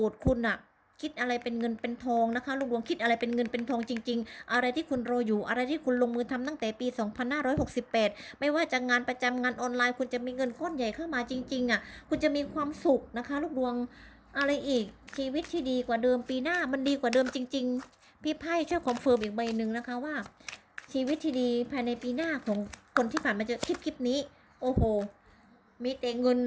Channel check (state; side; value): identical; both; correlation 1.00